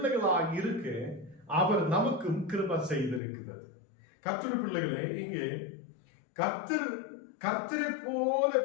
இருக்க அவர் நமக்கும் கிருபை செய்திருக்கிறது. கர்த்தருடைய பிள்ளைகளே, இங்கே கர்த்தரை போல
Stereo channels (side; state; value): right; drops out; at 3.2 s